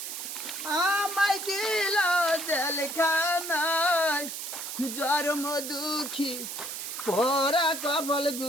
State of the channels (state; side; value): noise; right; hiss, 6 dB below the sound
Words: আমায় দিল জেলখানায় জন্ম দুঃখী পোরা কপাল